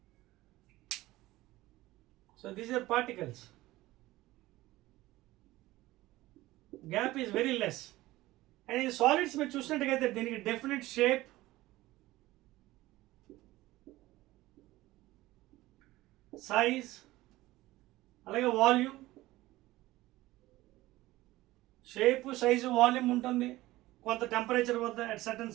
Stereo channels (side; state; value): left; quieter; 17.7 dB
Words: So these are particles. Gap is very less. And in solids మీరు చూసినట్టుగైతే దీనికి డెఫినెట్ షేప్, సైజ్, అలాగే వాల్యూమ్. షేప్, సైజు, వాల్యూమ్ ఉంటుంది కొంత టెంపరేచర్ వద్ద, at certain